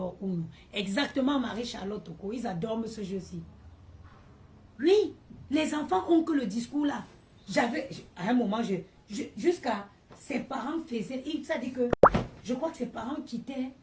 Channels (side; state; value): both; identical; correlation 1.00